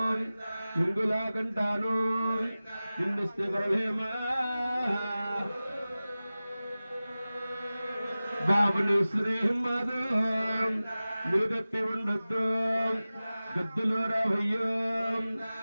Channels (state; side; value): inverted; both; correlation -0.97